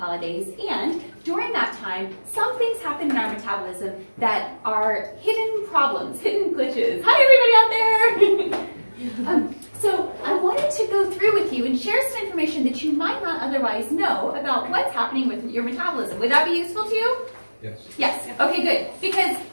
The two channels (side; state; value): both; inverted; correlation -1.00